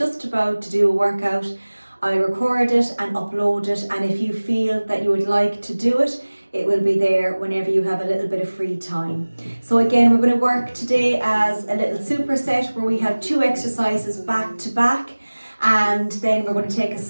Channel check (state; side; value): inverted; both; correlation -1.00